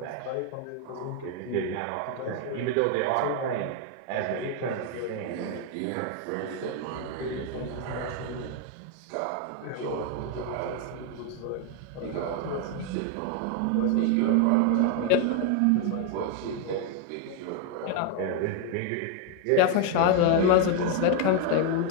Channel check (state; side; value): different; both; correlation 0.01